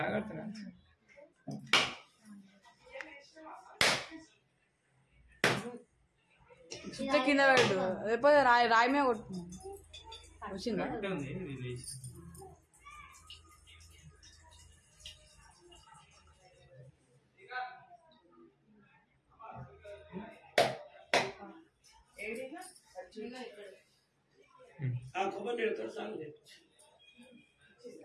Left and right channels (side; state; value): both; identical; correlation 1.00